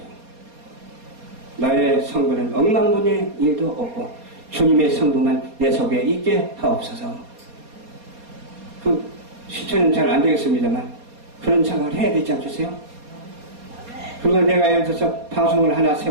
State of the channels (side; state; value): left; late; 4.2 ms